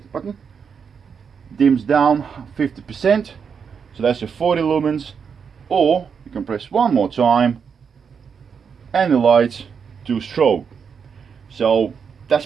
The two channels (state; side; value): quieter; left; 6.5 dB